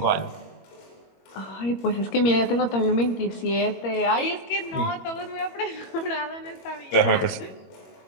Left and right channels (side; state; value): right; late; 21 ms